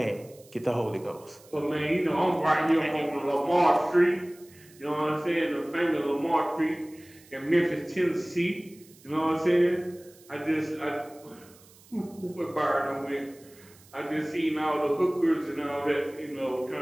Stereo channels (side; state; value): right; noise; hiss, 25 dB below the sound